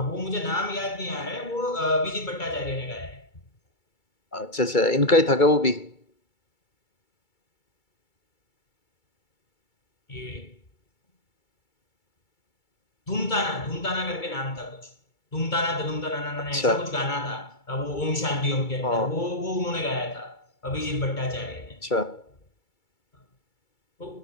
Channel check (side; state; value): right; late; 2.3 ms